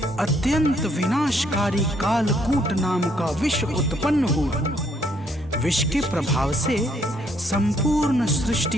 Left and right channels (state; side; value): normal; both; correlation 0.69